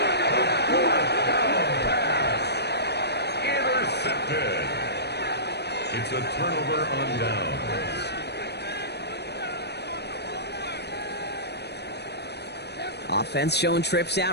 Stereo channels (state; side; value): late; right; 0.49 ms